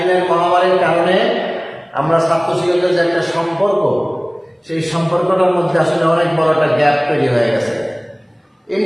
মহামারীর কারণে আমরা ছাত্র শিক্ষকদের যে একটা সম্পর্ক, সেই সম্পর্কটার মধ্যে আসলে অনেক বড় একটা গ্যাপ তৈরি হয়ে গেছে।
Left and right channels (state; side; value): identical; both; correlation 1.00